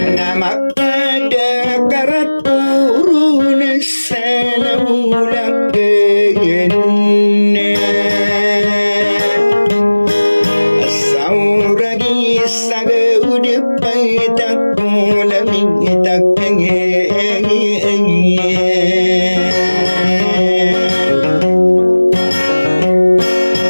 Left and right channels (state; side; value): inverted; both; correlation -1.00